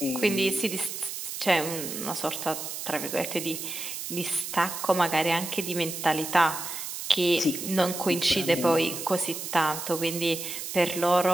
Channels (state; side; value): noise; right; hiss, 7 dB below the sound